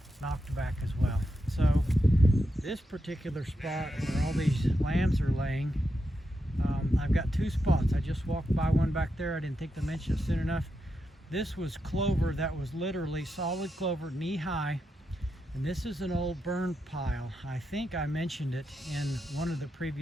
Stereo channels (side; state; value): both; normal; correlation 0.86